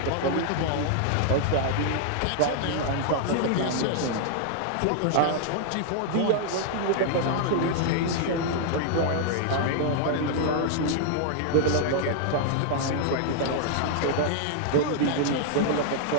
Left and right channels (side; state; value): both; different; correlation 0.00